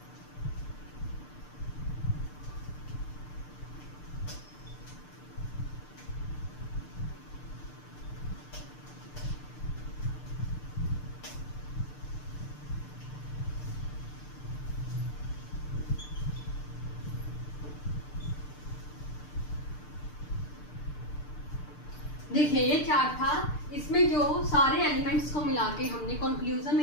देखिए ये चार्ट था, इसमें जो सारे एलिमेंट्स को मिला के हमने कंक्लूजन में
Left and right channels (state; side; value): late; right; 6.7 ms